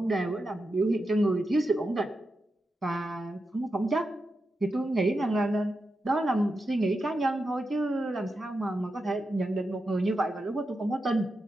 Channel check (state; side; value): normal; both; correlation 0.88